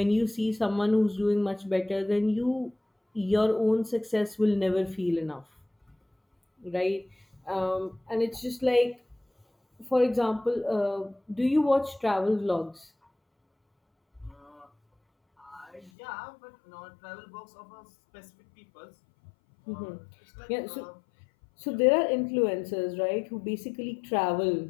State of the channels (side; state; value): right; drops out; at 15.9 s